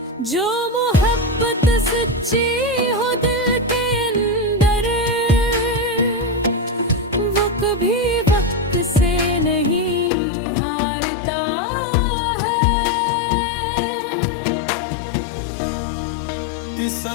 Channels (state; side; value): drops out; right; at 10.1 s